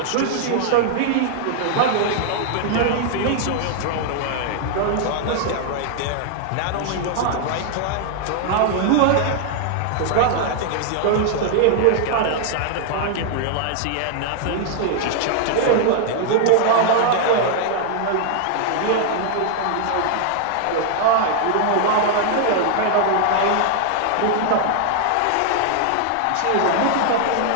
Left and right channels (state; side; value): different; both; correlation 0.00